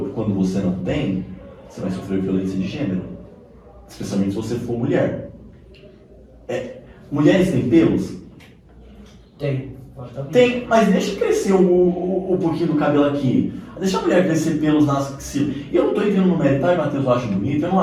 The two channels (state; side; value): identical; both; correlation 1.00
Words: Quando você não tem, você vai sofrer violência de gênero. Especialmente se você for mulher. Mulheres têm pelos? Tem, mas deixa crescer um pouquinho do cabelo aqui. Deixa a mulher crescer pelos nas axilas. Eu não estou entrando no mérito, tá, Matheus? Eu acho bonito, eu não